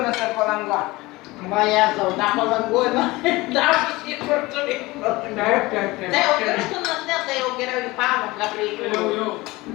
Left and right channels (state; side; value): quieter; right; 20.9 dB